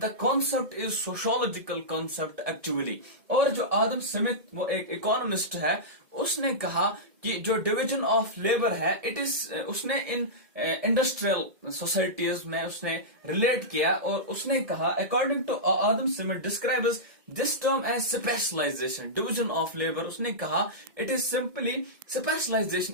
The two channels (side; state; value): left; late; 2.1 ms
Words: concept is sociological concept actually. और जो आदम स्मिथ वो एक इकोनॉमिस्ट है, उसने कहा कि जो डिवीजन ऑफ लेबर है इट इज, उसने इन इंडस्ट्रियल सोसाइटीज में उसने रिलेट किया और उसने कहा according to Adam Smith describes this term as specialization. Division of labour उसने कहा it is simply